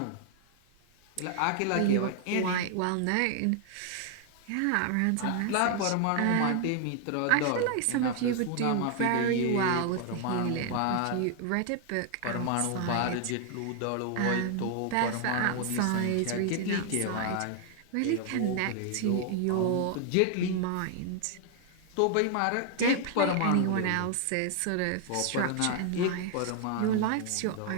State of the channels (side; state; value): both; different; correlation 0.00